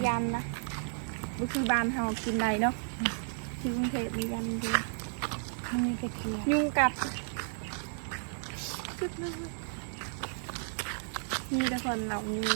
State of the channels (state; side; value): silent; left; 56 dB below the other